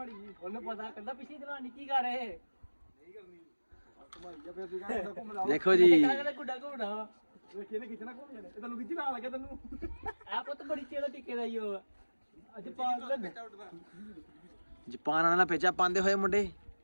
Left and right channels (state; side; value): inverted; both; correlation -1.00